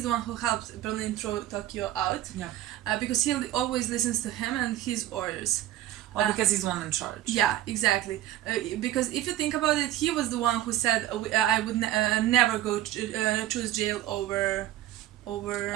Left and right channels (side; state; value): left; quieter; 13.6 dB